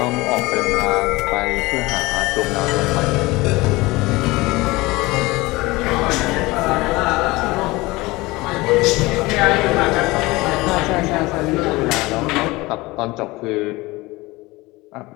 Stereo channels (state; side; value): quieter; right; 21.4 dB